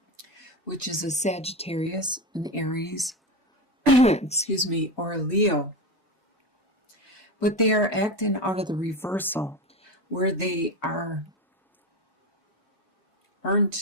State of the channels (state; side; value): normal; both; correlation 0.20